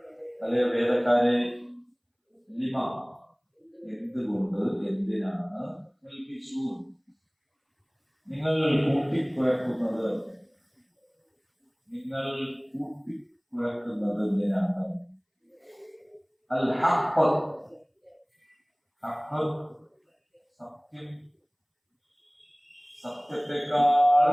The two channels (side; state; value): both; identical; correlation 1.00